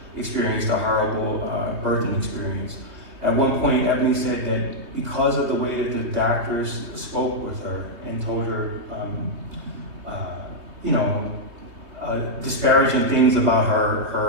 experienced a horrible birthing experience. At one point, Ebony said that because of the way that the doctors spoke with her and told her disparaging things about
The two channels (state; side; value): late; left; 3.2 ms